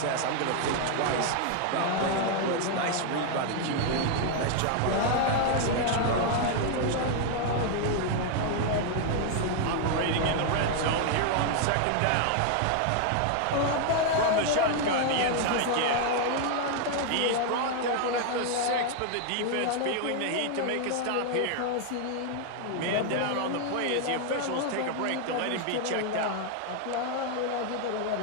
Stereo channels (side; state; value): both; different; correlation 0.00